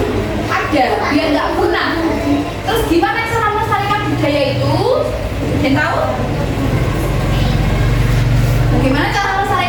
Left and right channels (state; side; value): identical; both; correlation 1.00